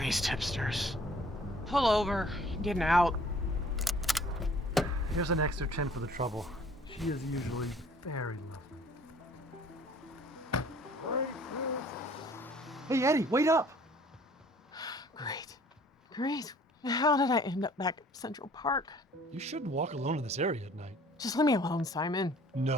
hipsters. Pull over. I'm getting out. Here's an extra 10 for the trouble. She is usually very lovely. Hey, Eddie, wait up! Great. How did I end up back at Central Park? You shouldn't walk alone in this area at night. Just leave me alone, Simon.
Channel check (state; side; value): normal; both; correlation 0.54